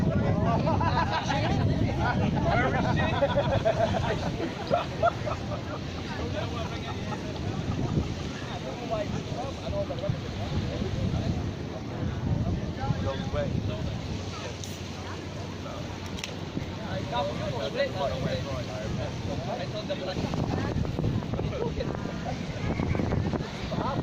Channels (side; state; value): both; identical; correlation 1.00